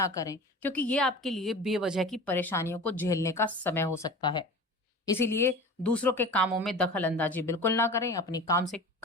करें, क्योंकि ये आपके लिए बेवजह की परेशानियों को झेलने का समय हो सकता है। इसीलिए दूसरों के कामों में दखल अंदाजी बिल्कुल ना करें। अपनी काम से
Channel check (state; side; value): normal; both; correlation 0.36